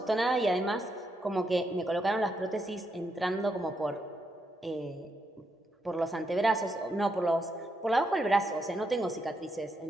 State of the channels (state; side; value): normal; both; correlation 0.80